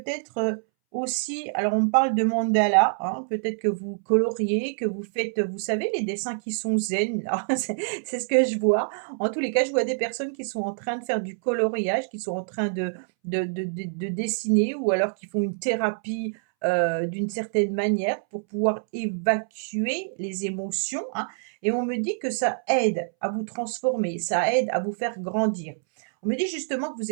aussi alors on me parle de mandala, hein, peut-être que vous coloriez, que vous faites, vous savez les dessins qui sont zen là, c'est ce que je vois. En tous les cas, je vois des personnes qui sont en train de faire du coloriage, qui sont en train de dessiner ou alors qui font une thérapie d'une certaine manière pour pouvoir évacuer les émotions, hein. Et on me dit que ça aide à vous transformer, ça aide à vous faire grandir. On me dit justement que vous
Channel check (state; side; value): silent; left; 61 dB below the other